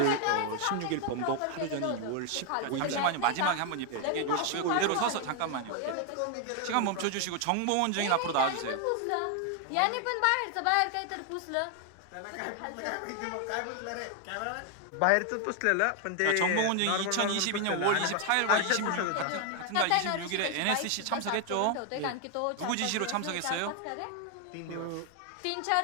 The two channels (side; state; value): both; different; correlation 0.01